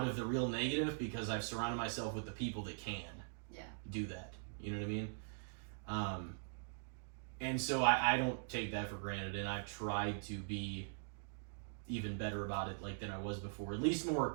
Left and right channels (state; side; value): silent; left; digital silence